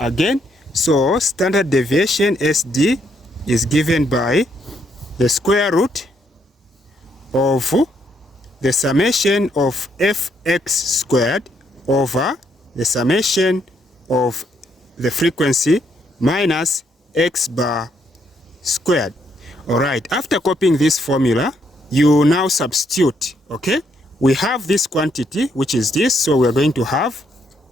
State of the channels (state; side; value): normal; both; correlation 0.73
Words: So standard deviation SD is given by the square root of the summation of fx squared over the summation of the frequency minus x bar squared. All right, after copying this formula, you now substitute. Okay, we have this quantity, which is this, so we're going to have